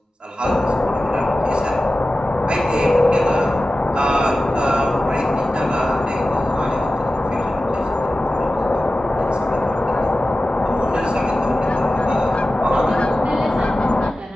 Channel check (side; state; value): both; normal; correlation 0.95